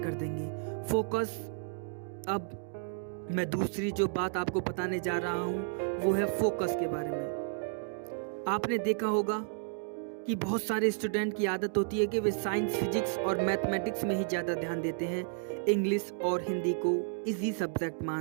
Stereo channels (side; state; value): left; silent; digital silence